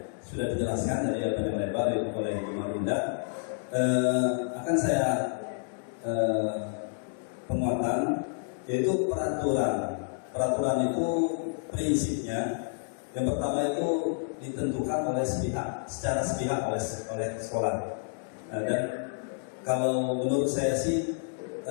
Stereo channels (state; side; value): silent; right; digital silence